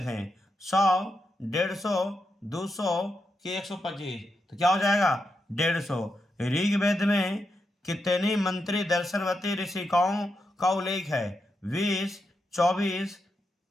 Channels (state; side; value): normal; both; correlation 0.85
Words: 100, 150, 200, कि 125। तो क्या हो जाएगा 150। ऋग्वेद में कितनी मंत्री दर्शनवती ऋषिकाओं का उल्लेख है, 20, 24,